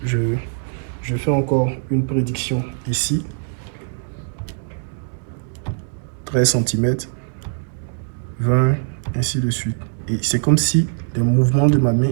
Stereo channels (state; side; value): silent; left; digital silence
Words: je fais encore une prédiction ici. 13 cm, 20, ainsi de suite. Et c'est comme si les mouvements de ma main